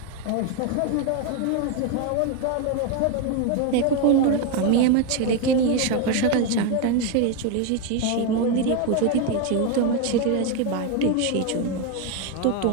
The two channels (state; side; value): different; both; correlation 0.02